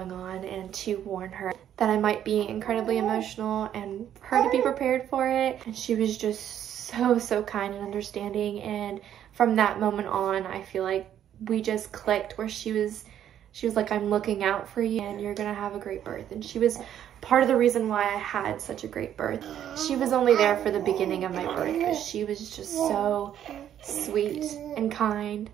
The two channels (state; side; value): quieter; left; 10.4 dB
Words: on and to warn her that I might be incredibly emotional and for her to be prepared for it. And she was just so kind and understanding, and from that moment on I feel like we just clicked, where she was She was like, I'm looking out for you and you're gonna have a great birth. And she was part of the reason why I had such a great birth. She was only there for the beginning of my birth, but she was just so sweet and kind